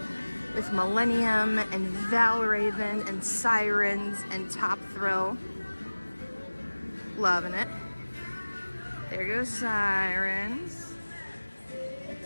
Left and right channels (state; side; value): inverted; both; correlation -1.00